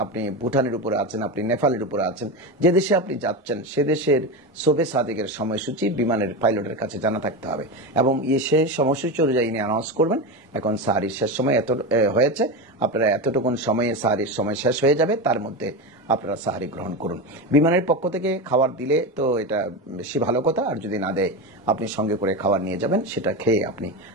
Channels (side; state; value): both; normal; correlation 0.19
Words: আপনি ভুটানের উপরে আছেন, আপনি নেপালের উপরে আছেন, যে দেশে আপনি যাচ্ছেন সে দেশের শোবে সাদিকের সময়সূচি বিমানের পাইলটের কাছে জানা থাকতে হবে, এবং সে সময়সূচি অনুযায়ী অ্যানাউন্স করবেন এখন সাহারির শেষ সময় এত হয়েছে, আপনারা এতটুকুন সময়ে সাহারির সময় শেষ হয়ে যাবে, তার মধ্যে আপনারা সাহারি গ্রহণ করুন। বিমানের পক্ষ থেকে খাবার দিলে তো এটা বেশি ভালো কথা, আর যদি না দেয় আপনি সঙ্গে করে খাবার নিয়ে যাবেন, সেটা খেয়ে আপনি